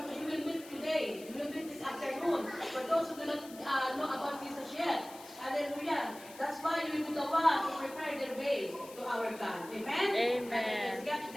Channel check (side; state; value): left; noise; hiss, 18 dB below the sound